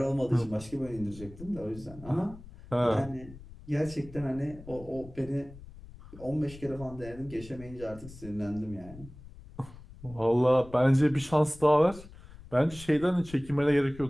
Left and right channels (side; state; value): left; noise; rumble, 18 dB below the sound